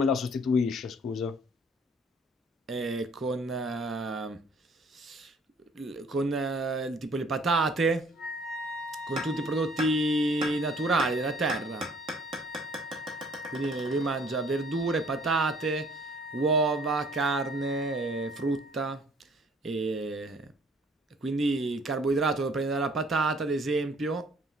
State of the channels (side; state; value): both; normal; correlation 0.57